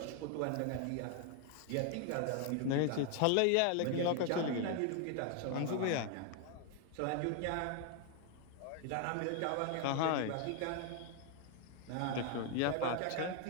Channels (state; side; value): different; both; correlation 0.00